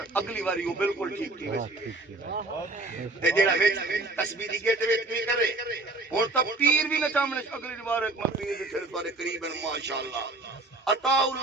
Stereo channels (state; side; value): quieter; left; 3.1 dB